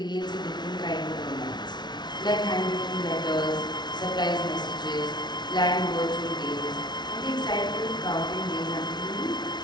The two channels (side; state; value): right; late; 0.20 ms